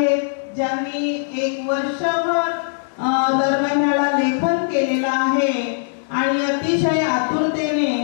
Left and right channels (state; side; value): silent; right; digital silence